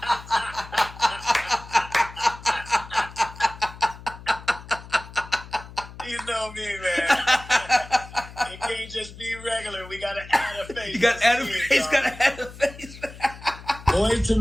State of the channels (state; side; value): noise; left; hum, 16 dB below the sound